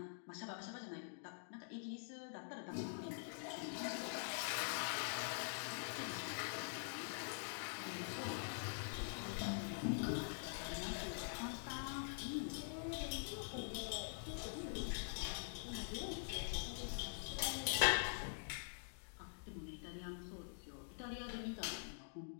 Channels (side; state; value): right; silent; digital silence